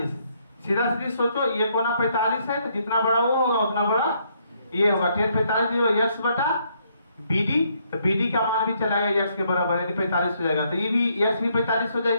सीधा सीधी सोचो, ये कोना 45 है तो जितना बड़ा वो होगा उतना बड़ा ये होगा। 10 45 यक्स बटा BD, तो BD का मान भी चलाएगा यक्स के बराबर, यानी 45 हो जाएगा। तो ये भी यक्स भी 45 हो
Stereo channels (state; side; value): inverted; both; correlation -0.71